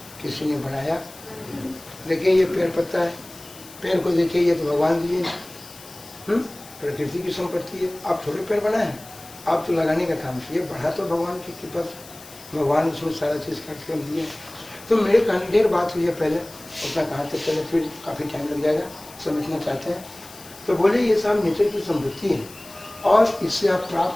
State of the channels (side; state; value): left; noise; hiss, 19 dB below the sound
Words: किसी ने बनाया। देखिए ये पेड़ पत्ता है, पेड़ को देखिए, ये तो भगवान दिए, प्रकृति की संपत्ति है। आप थोड़े पेड़ बनाए हैं, आप तो लगाने का काम किए, बढ़ा तो भगवान की कृपा से, भगवान उसमें सारा चीज़ काट कर दिए। तो मेरे कहने ढेर बात हुई है पहले, उतना कहाँ तक चले, फिर काफ़ी टाइम लग जाएगा, समझना चाहते हैं तो बोले ये सब नेचर की संपत्ति है, और इससे आप